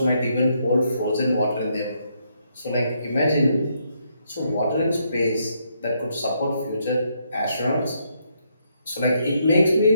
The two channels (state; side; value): inverted; both; correlation -0.75